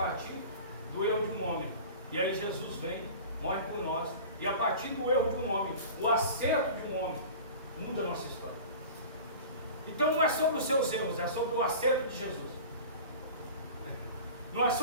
do erro de um homem. E aí Jesus vem, morre por nós, e a partir do erro de um homem, o acerto de um homem, muda a nossa história. Então não é sobre os seus erros, é sobre o acerto de Jesus. Não é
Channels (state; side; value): inverted; both; correlation -0.37